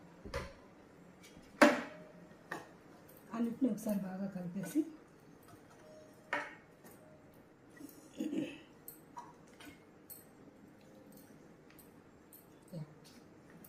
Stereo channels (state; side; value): identical; both; correlation 1.00